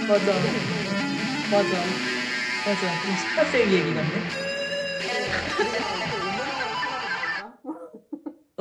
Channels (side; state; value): both; identical; correlation 1.00